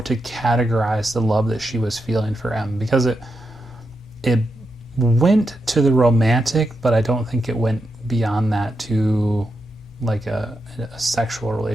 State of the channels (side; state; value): both; normal; correlation 0.86